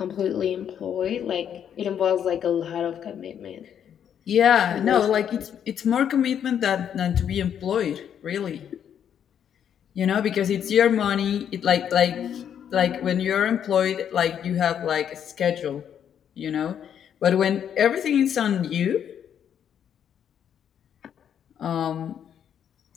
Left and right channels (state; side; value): quieter; right; 8.9 dB